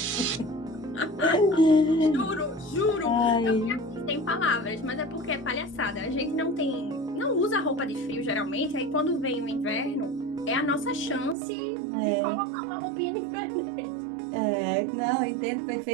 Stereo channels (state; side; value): drops out; left; at 11.4 s